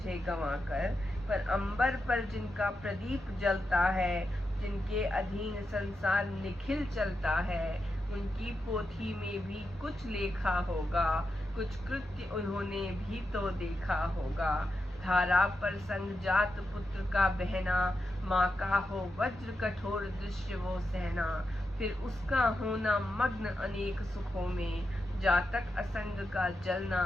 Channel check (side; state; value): both; normal; correlation 0.87